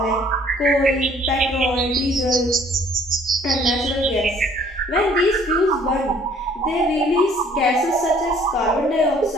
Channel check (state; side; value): normal; both; correlation 0.57